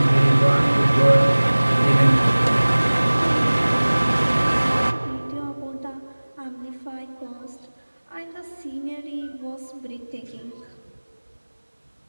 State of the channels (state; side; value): inverted; both; correlation -1.00